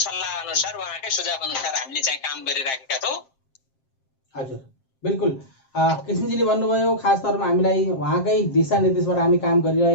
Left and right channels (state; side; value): late; right; 7.6 ms